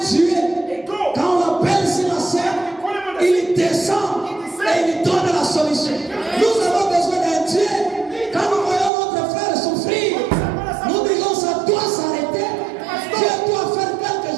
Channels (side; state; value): left; drops out; at 8.9 s